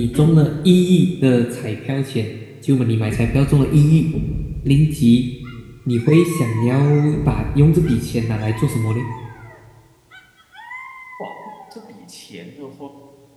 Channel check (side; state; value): both; identical; correlation 1.00